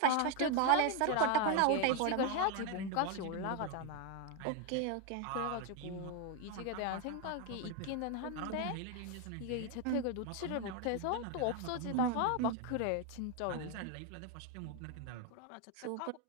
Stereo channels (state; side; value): different; both; correlation 0.01